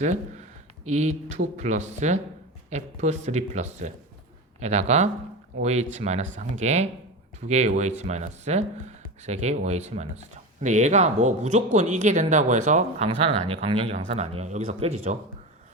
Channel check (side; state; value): both; normal; correlation 0.24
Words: E2 플러스 F3 플러스 에다가 OH 마이너스 1개, 2개의 OH 마이너스, 3개의 OH 마이너스죠. 근데 얘가 뭐 무조건 이게 된다고 해서 강산은 아니에요. 강력이 강산은 아니에요. 여기서 깨지죠.